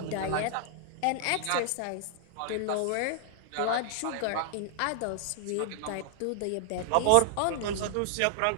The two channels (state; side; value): different; both; correlation 0.00